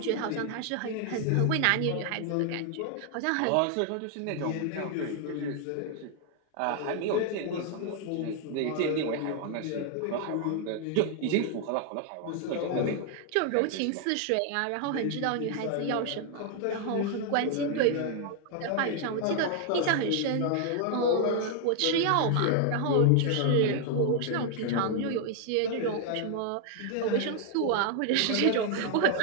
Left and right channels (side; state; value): both; different; correlation 0.00